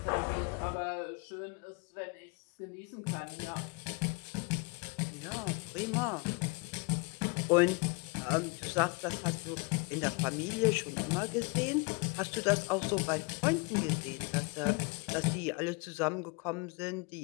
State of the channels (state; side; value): quieter; right; 29.9 dB